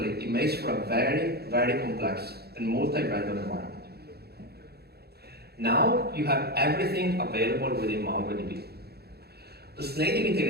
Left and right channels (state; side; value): late; left; 0.46 ms